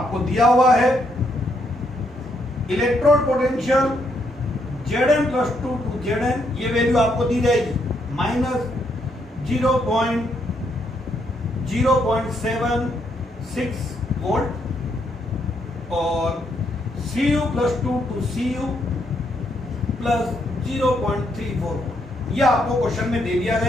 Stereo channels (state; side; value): normal; both; correlation 0.75